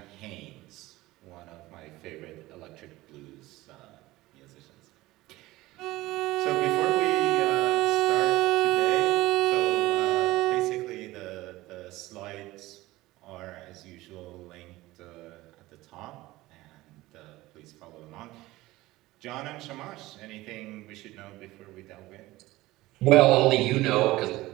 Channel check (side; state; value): left; quieter; 18.4 dB